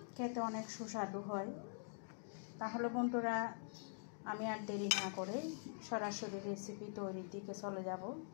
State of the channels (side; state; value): right; silent; digital silence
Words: খেতে অনেক সুস্বাদু হয়। তাহলে বন্ধুরা, আমি আর দেরি না করে সরাসরি রেসিপি তৈরির দিকে চলে যাব।